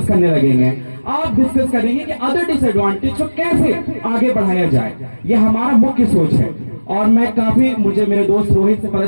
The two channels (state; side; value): inverted; both; correlation -1.00